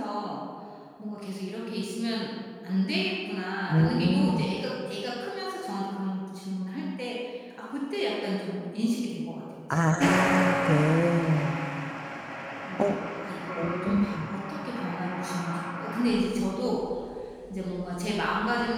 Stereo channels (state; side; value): identical; both; correlation 1.00